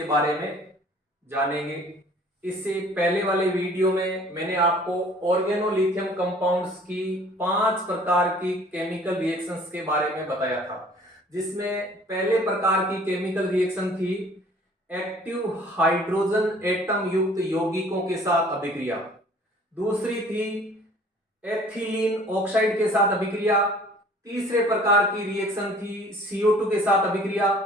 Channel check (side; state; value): both; normal; correlation 0.52